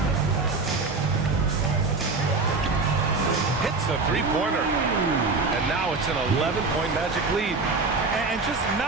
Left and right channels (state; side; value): quieter; left; 4.0 dB